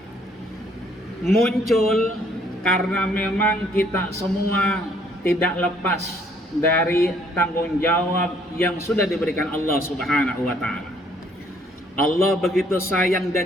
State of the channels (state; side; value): normal; both; correlation 0.64